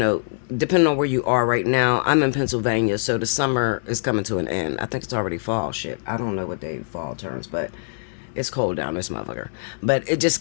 depending on where you are right now. I'm in Pennsylvania, so the summer is coming to an end. I think it's already fall. Shit, I don't know what day fall turns, but it's cold down this motherfucker. But it just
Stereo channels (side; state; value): right; silent; 57 dB below the other